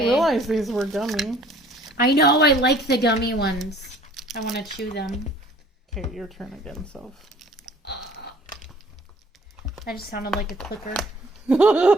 these were gummy. I know. I like the gummy ones. I want to chew them. Okay, your turn again, Soph. I just sounded like a clicker.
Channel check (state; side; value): normal; both; correlation 0.53